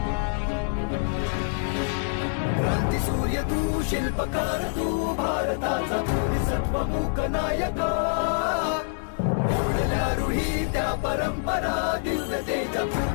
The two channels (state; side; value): silent; right; 61 dB below the other